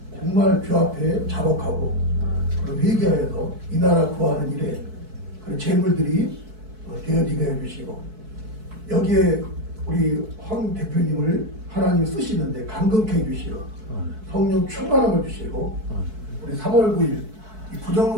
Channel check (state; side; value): late; left; 4.6 ms